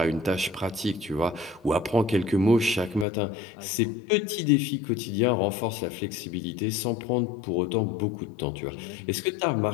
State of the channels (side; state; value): right; drops out; at 3.1 s